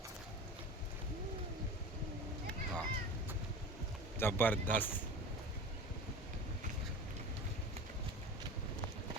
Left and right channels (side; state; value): both; normal; correlation 0.33